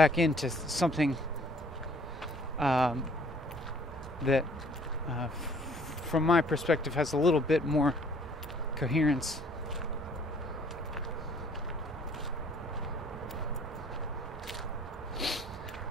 into something that from my perspective has a little bit more coherence.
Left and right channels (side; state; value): both; normal; correlation 0.58